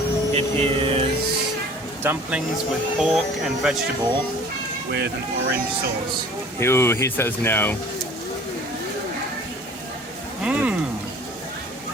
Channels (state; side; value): normal; both; correlation 0.48